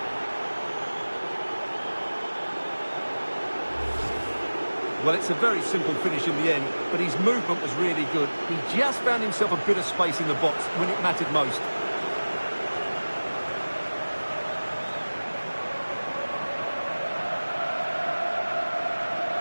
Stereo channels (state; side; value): inverted; both; correlation -1.00